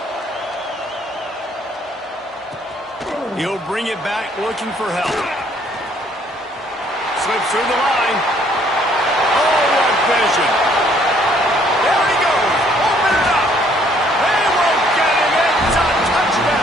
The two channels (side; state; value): both; normal; correlation 0.64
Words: He'll bring it back looking for help. Slips through the line. Oh, what vision. There he goes. Open it up. They won't get him. It's a